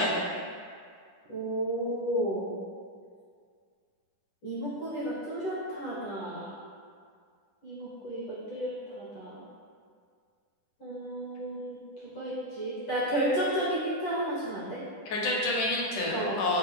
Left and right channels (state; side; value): late; right; 10 ms